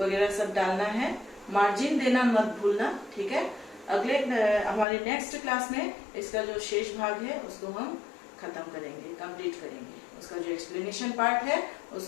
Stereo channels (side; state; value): right; drops out; at 4.9 s